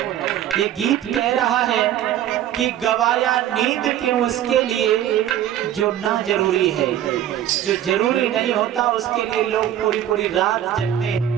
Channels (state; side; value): quieter; left; 11.5 dB